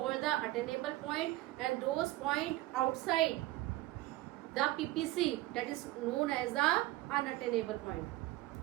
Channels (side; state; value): left; quieter; 18.1 dB